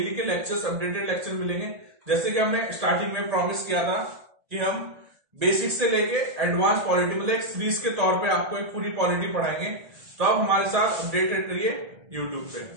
के लेक्चर्स, अपडेटेड लेक्चर मिलेंगे। जैसे कि हमने स्टार्टिंग में प्रॉमिस किया था कि हम बेसिक से लेके एडवांस पॉलिटी, मतलब एक सीरीज के तौर पे आपको एक पूरी पॉलिटी पढ़ाएंगे। तो आप हमारे साथ अपडेटेड रहिए यूट्यूब पे।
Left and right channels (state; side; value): late; left; 1.7 ms